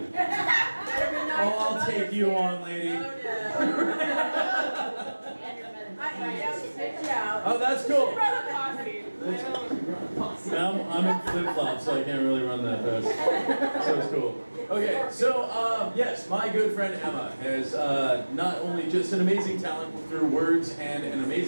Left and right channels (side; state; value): both; inverted; correlation -1.00